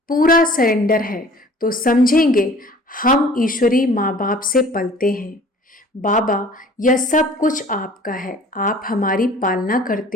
पूरा सरेंडर है, तो समझेंगे हम ईश्वरी माँ बाप से पलते हैं। बाबा, यह सब कुछ आपका है, आप हमारी पालना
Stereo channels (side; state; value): both; normal; correlation 0.49